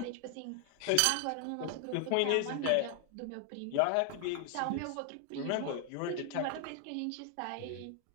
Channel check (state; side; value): different; both; correlation 0.00